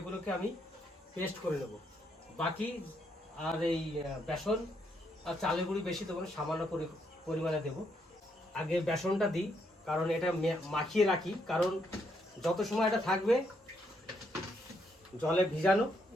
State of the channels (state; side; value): normal; both; correlation 0.76